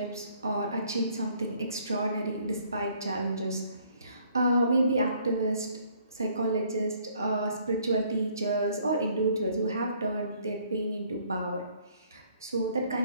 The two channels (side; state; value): both; inverted; correlation -0.63